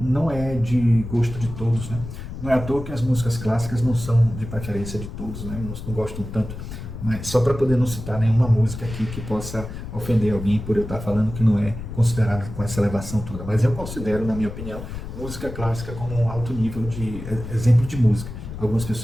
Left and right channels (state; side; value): noise; left; rumble, 9 dB below the sound